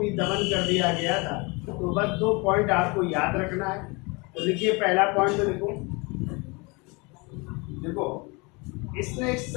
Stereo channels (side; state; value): right; quieter; 27.6 dB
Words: दमन कर दिया गया था। तो बस 2 पॉइंट आपको याद रखना है। तो लिखिए, पहला पॉइंट तो देखो, इसने